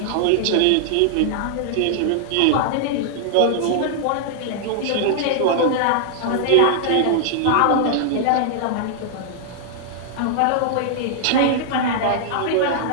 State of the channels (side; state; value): both; different; correlation -0.01